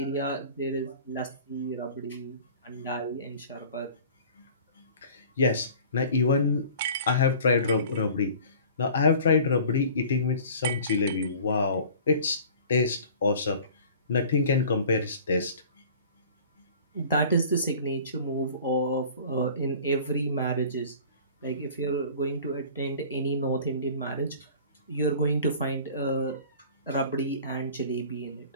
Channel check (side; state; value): both; inverted; correlation -0.45